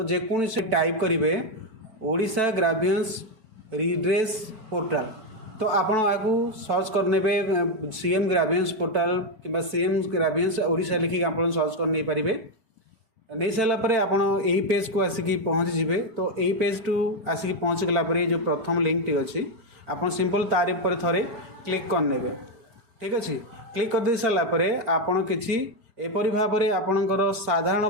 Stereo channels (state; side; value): late; left; 4.8 ms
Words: जेकोसी टाइप करेंगे ओडिशा ग्राभियंस रिड्रेस पोर्टाल तो आपण आपको सर्च करने सीएम ग्राभियंस पोर्टाल कि सीएम ग्राभियंस ओडिशा लिखिक आप सर्च कर नहीं पारे। नहीं सारापर आपड़ यही पेज को आसिक पहुँची जी तो यही पेज टू आसिक पहुँची गलापर जो प्रथम लिंक टी अच्छी आप सिंपल तार पर थे क्लिक करने। ठीक अच्छे क्लिक कर दे सारापर आपड़ किसी एपरी भाव में आपणकर साधारण